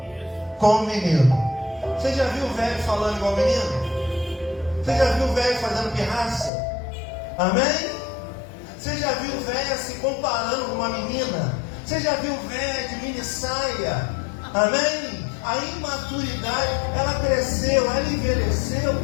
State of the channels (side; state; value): right; drops out; at 6.5 s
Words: como menino. Você já viu o velho falando igual menino? Você já viu o velho fazendo pirraça? Amém? Você já viu o velho se comparando com uma menina? Você já viu o velho de mini saia? Amém? A imaturidade, ela cresceu, ela envelheceu,